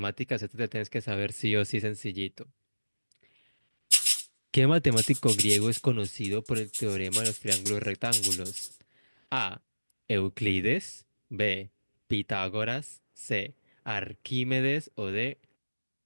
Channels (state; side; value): inverted; both; correlation -1.00